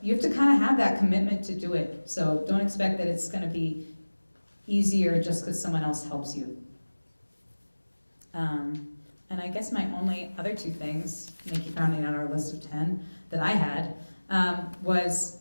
you have to kind of have that commitment to do it. So don't expect that it's going to be easier just because someone else helps you. And I guess my only other two things, Nikki rounding out our list of 10 that I had, was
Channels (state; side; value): inverted; both; correlation -1.00